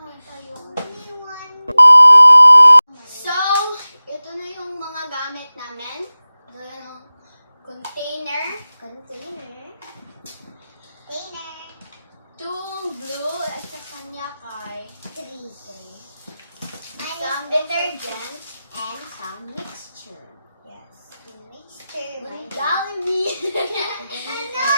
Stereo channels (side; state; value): both; inverted; correlation -0.97